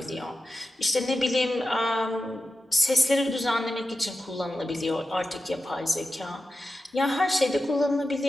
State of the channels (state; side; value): normal; both; correlation 0.91